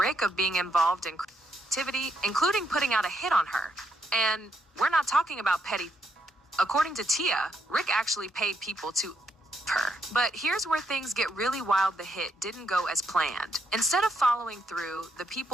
of being involved in activity, including putting out a hit on her. And we're not talking about petty. According to Tia, Rick actually paid people to her. But here's where things get really wild. The hit didn't go as planned. Instead of following through, the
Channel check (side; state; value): both; normal; correlation 0.77